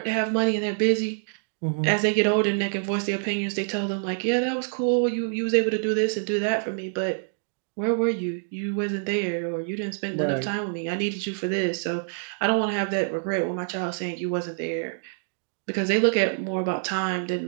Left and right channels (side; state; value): left; silent; digital silence